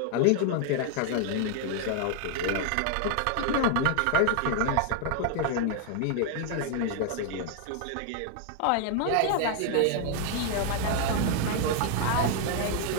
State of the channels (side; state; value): both; different; correlation 0.00